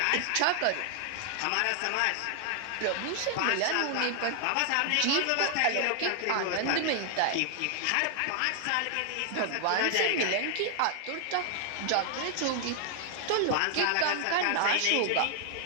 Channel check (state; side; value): different; both; correlation 0.00